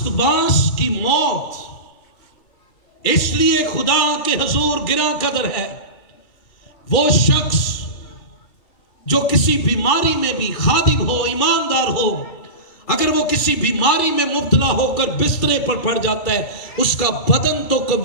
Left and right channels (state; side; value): late; right; 2.3 ms